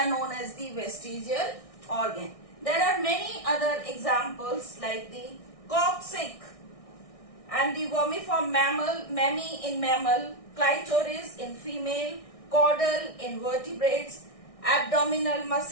known as the vestigial organ. There are many other examples like the coccyx and the vermiform mammal, mammae in mammal, clitoris in female, caudal in vertebrates, abdominal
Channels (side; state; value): right; late; 1.6 ms